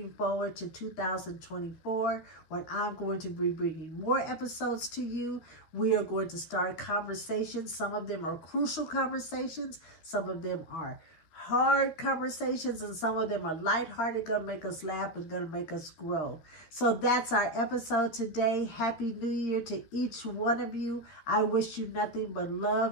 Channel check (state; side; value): late; right; 13 ms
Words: forward to 2024, when I'm going to be bringing more episodes to you. We are going to start conversations. Some of them are crucial conversations. Some of them are hard conversations, and some of them are lighthearted, gonna make us laugh and gonna make us grow. So that's our episode today. Happy New Year to each one of you. I wish you nothing but